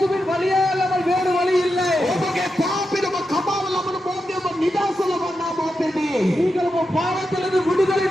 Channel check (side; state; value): both; normal; correlation 0.88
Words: வழியே அல்லாமல் வேறு வழி இல்லை. ඔබගේ පාපෙම කපාව ලබන මොහොතේ ඔබ නිදහස ලබන්නා මොහොතේදී நீங்கள் உங்க பாவத்திலிருந்து விடுதலை